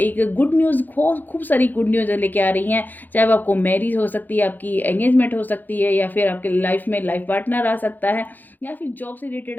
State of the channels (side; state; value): right; late; 0.086 ms